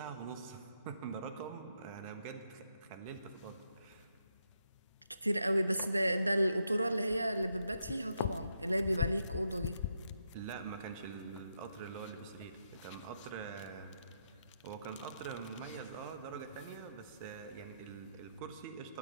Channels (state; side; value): inverted; both; correlation -0.80